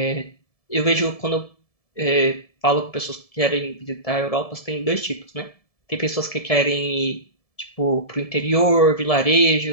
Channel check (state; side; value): late; right; 1.7 ms